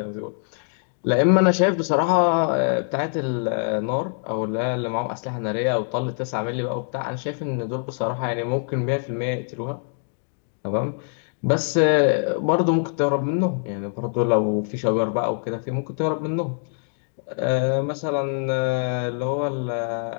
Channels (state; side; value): silent; right; 61 dB below the other